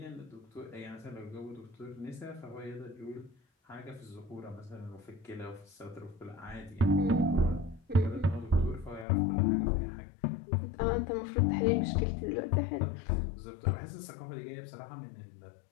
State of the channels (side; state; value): right; drops out; at 9.1 s